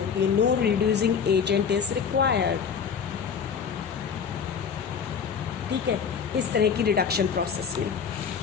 है, no reducing agent is required. ठीक है, इस तरह की रिडक्शन प्रोसेस में।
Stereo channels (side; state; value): right; quieter; 6.7 dB